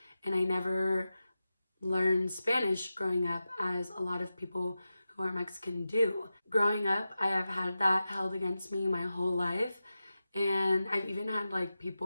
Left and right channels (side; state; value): both; inverted; correlation -0.92